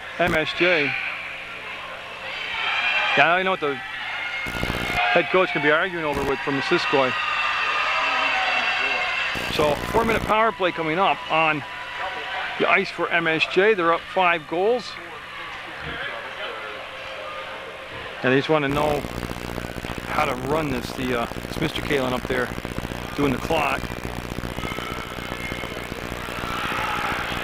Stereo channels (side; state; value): both; identical; correlation 1.00